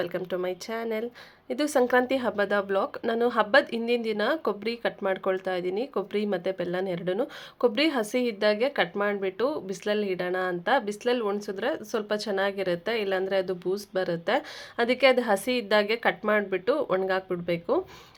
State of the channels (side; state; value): both; identical; correlation 1.00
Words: to my channel. ಇದು ಸಂಕ್ರಾಂತಿ ಹಬ್ಬದ ಬ್ಲಾಗ್. ನಾನು ಹಬ್ಬದ ಹಿಂದಿನ ದಿನ ಕೊಬ್ಬರಿ ಕಟ್ ಮಾಡ್ಕೊಳ್ತಾ ಇದ್ದೀನಿ. ಕೊಬ್ಬರಿ ಮತ್ತು ಬೆಲ್ಲನ ಎರಡೂ. ಕೊಬ್ಬರಿ ಹಸಿ ಇದ್ದಾಗೆ ಕಟ್ ಮಾಡಿಬಿಟ್ಟು ಬಿಸಿಲಲ್ಲಿ ಇಡೋಣ ಅಂತ. ಬಿಸಿಲಲ್ಲಿ ಒಣಸಿದ್ರೆ ಸ್ವಲ್ಪ ಚೆನ್ನಾಗಿರುತ್ತೆ, ಇಲ್ಲಾಂದರೆ ಅದು ಬೂಸ್ಟ್ ಬರುತ್ತೆ. ಅದಕ್ಕೆ ಅದು ಹಸಿ ಇದ್ದಾಗೆ ಕಟ್ ಮಾಡಿಬಿಟ್ಟು ಒಣಗಾಕ್ಬಿಡ್ಬೇಕು.